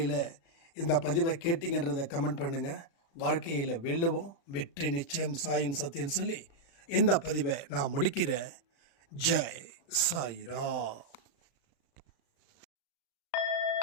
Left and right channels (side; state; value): right; late; 35 ms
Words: இந்த பதிவை கேட்டிங்கன்றதை கமெண்ட் பண்ணுங்கள். வாழ்க்கையில் வெல்லுவோம், வெற்றி நிச்சயம், சாயின் சத்தியம் சொல்லி இந்த பதிவை நான் முடிக்கிறேன். ஜெய் சாய்ராம்.